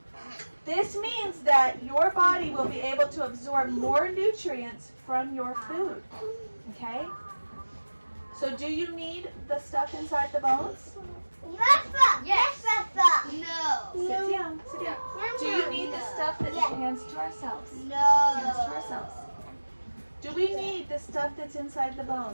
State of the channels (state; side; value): inverted; both; correlation -1.00